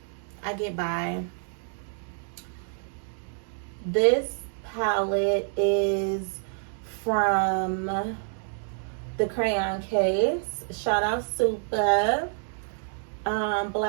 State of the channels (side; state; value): left; silent; digital silence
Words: I get by. This palette is from the Crayon Case. Shout out Super.